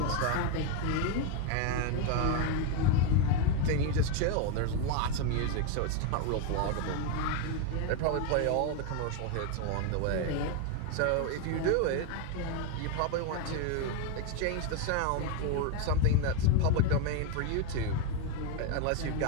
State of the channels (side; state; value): both; different; correlation 0.02